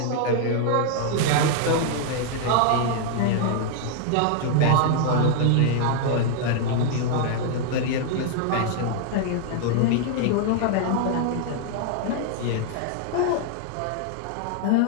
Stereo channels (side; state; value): both; different; correlation 0.00